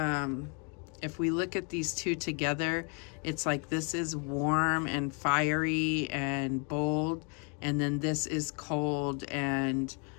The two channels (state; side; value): quieter; right; 36.8 dB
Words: if we look at these two together, it's like this is warm and fiery and bold, and then this is cold and